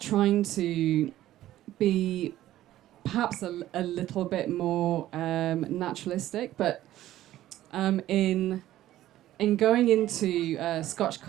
to be perhaps a little bit more naturalistic, but in going into Scotch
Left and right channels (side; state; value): left; quieter; 14.0 dB